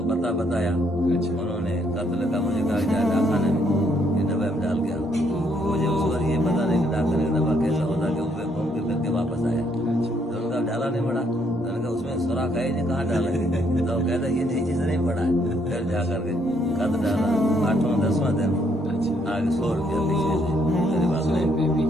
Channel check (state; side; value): normal; both; correlation 0.70